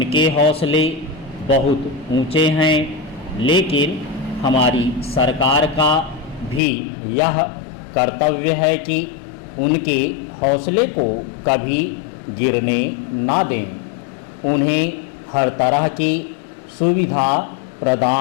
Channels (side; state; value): right; drops out; at 6.6 s